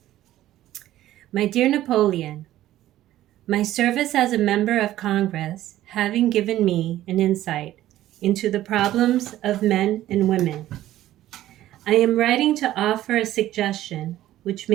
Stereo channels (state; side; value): quieter; left; 13.9 dB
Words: My dear Napoleon, my service as a member of Congress having given me an insight into the problems of men and women, I am writing to offer a suggestion which